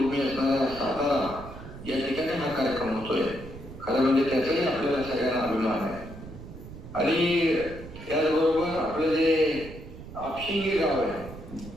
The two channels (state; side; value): noise; right; rumble, 14 dB below the sound